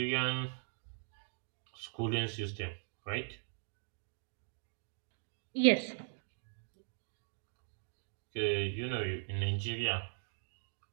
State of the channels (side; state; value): left; silent; digital silence